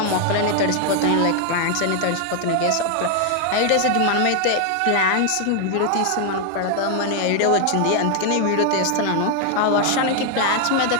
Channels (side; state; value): both; different; correlation 0.00